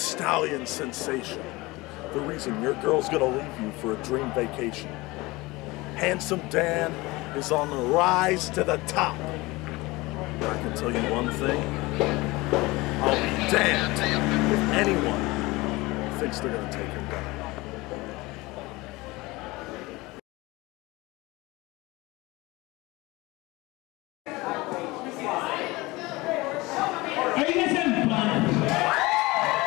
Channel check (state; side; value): quieter; right; 21.8 dB